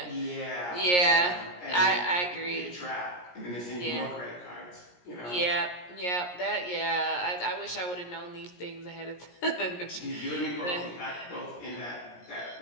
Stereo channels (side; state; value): right; late; 17 ms